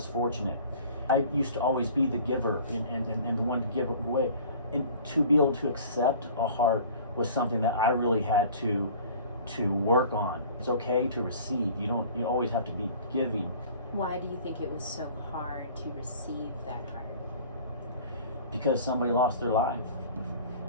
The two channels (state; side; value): inverted; both; correlation -0.46